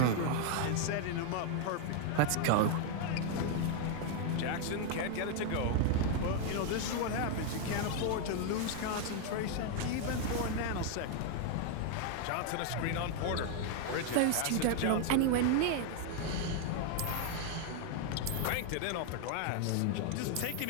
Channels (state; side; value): different; both; correlation 0.00